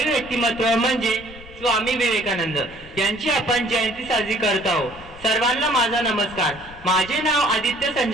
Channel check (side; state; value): left; noise; rumble, 20 dB below the sound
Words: व्यक्तिमत्व म्हणजे स्वामी विवेकानंद यांची आपण जयंती साजरी करत आहोत. सर्वांना माझा नमस्कार. माझे नाव आदित्य